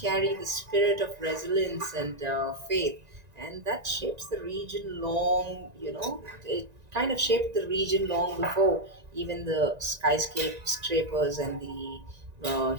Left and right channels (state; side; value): late; left; 1.9 ms